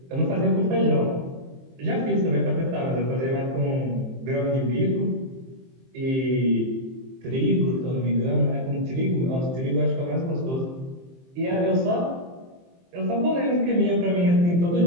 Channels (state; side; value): late; left; 23 ms